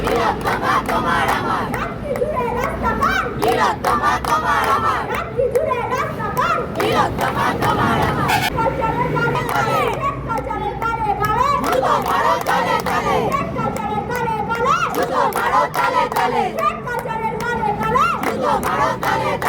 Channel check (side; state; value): both; identical; correlation 1.00